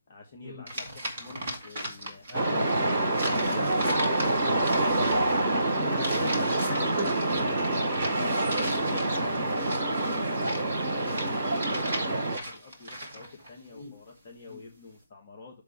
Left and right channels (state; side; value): inverted; both; correlation -0.75